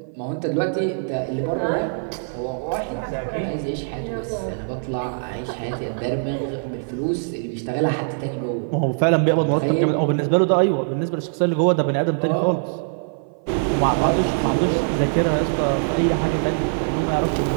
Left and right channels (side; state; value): left; silent; 57 dB below the other